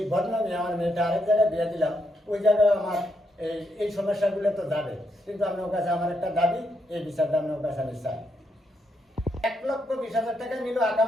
বদনামে আমার মেয়েটা আরেক জায়গায় বিয়ে দিলাম, ওই জায়গায় আমার এই সমস্যাগুলো তো যাবে। কিন্তু আপনার কাছে আমার একটা দাবি, এই বিচারটা আপনার কাছে আমি চাই। 1,20,000 টাকা নিল,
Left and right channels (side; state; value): both; normal; correlation 0.79